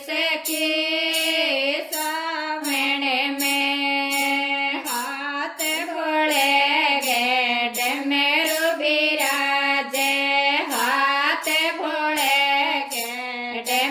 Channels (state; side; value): identical; both; correlation 1.00